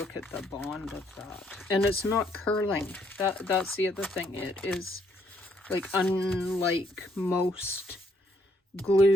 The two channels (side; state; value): both; normal; correlation 0.70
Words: at the bond of that. And it's not curling. That's the other thing. It is, like, unlike most